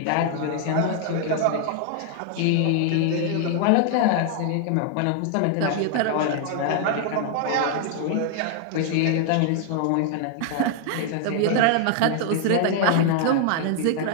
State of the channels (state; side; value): different; both; correlation 0.00